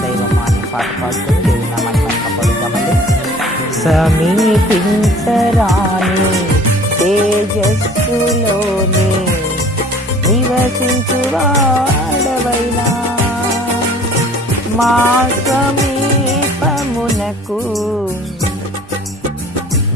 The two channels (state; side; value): normal; both; correlation 0.50